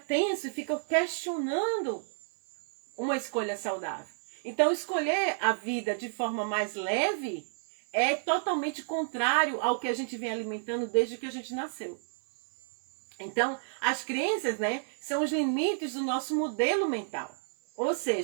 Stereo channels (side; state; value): left; silent; 57 dB below the other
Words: e fica questionando uma escolha saudável. Então, escolher a vida de forma mais leve é totalmente contrário ao que a gente vem alimentando desde que a gente nasceu. Então, as crenças, né, são os limites do nosso modelo mental. Ou